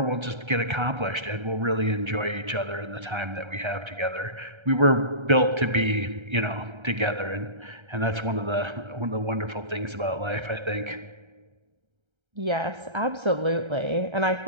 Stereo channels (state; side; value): late; left; 1.3 ms